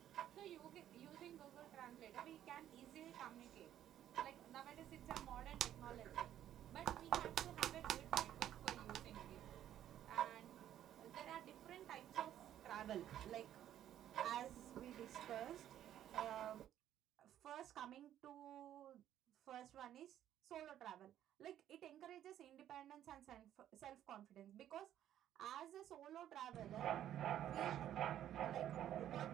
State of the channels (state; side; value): quieter; left; 11.4 dB